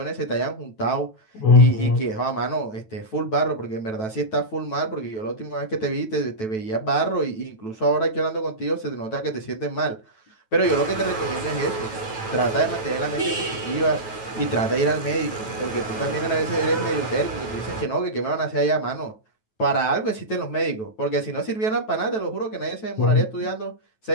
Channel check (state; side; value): late; right; 9.2 ms